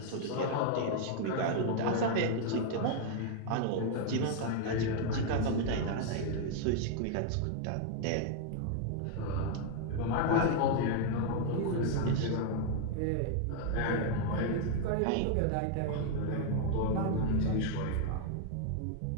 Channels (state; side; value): different; both; correlation 0.00